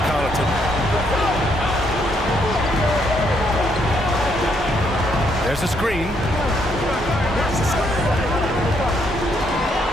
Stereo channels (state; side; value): normal; both; correlation 0.73